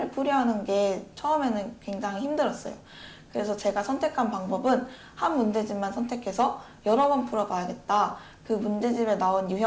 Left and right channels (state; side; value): identical; both; correlation 1.00